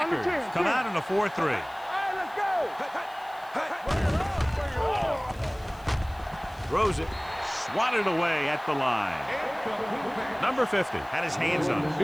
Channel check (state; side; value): noise; left; hiss, 26 dB below the sound